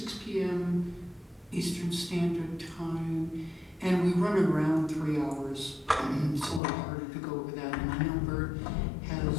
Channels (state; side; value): drops out; right; at 6.6 s